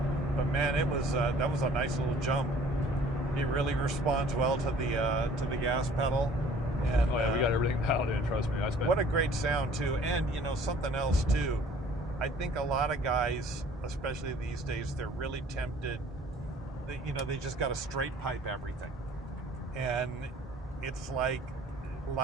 But man, it was that was a nice little jump. It really responds well to the gas pedal. And oh yeah, we got everything dialed in. Trust me. What a great sound too. And you know something else too. I think a lot of guys, especially these days, they're really tempted. They just got to straight pipe everything, and it's like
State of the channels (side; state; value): both; normal; correlation 0.53